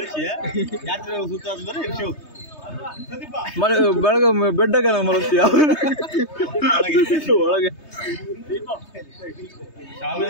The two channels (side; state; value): right; late; 3.2 ms